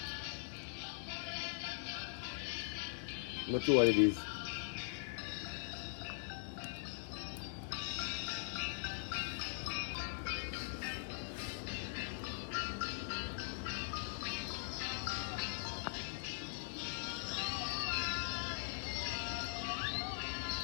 Not sure what it is.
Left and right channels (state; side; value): silent; right; digital silence